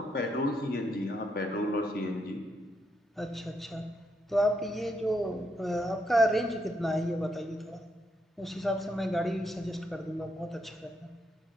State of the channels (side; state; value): both; normal; correlation 0.78